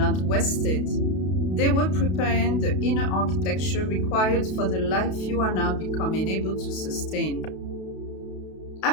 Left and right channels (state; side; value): late; right; 32 ms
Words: wasted. They were preparing the inner architecture required for the life you are now becoming able to sustain.